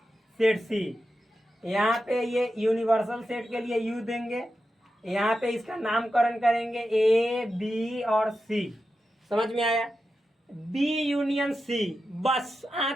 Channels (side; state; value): both; normal; correlation 0.90